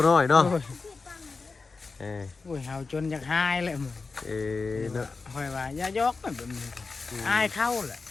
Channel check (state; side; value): quieter; right; 4.3 dB